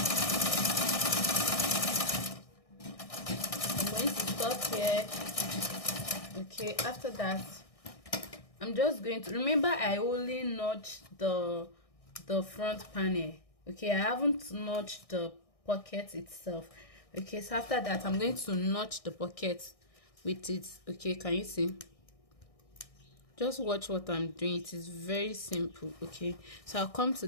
Here. Okay, after that I'm just going to, remember I only notched the front panel. Okay, I haven't notched the pocket itself. Okay, so after that I'm going to notch the pocket with it. Okay, can you see? Just watch what I'm doing. It is very simple. Okay, so I'll come to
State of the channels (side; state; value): right; late; 1.6 ms